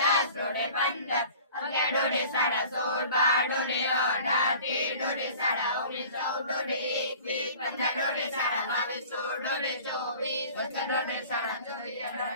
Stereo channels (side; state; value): both; inverted; correlation -0.45